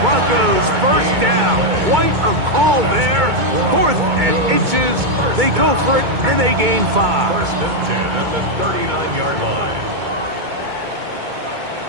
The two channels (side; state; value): left; late; 2.2 ms